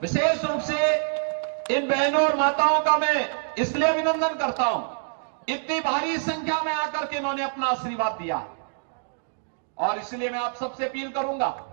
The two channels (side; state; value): left; silent; digital silence